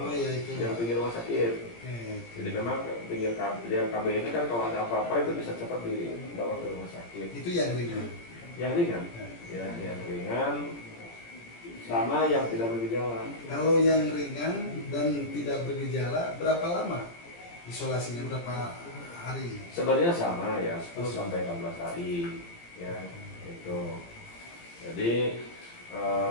pinggir rumah sakit. Jadi memang pinggir KB ini kan kalau ada apa-apa itu bisa cepat dibawa ke rumah sakit. Itu yang ringan. Yang ringan, ya, yang ringan sama yang tidak bergejala. Kalau yang ringan dan tidak bergejala berapa lama isolasinya, berapa hari? Sebenarnya sama ya, 10 sampai 14 hari, ya, itu. Jadi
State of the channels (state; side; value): late; right; 17 ms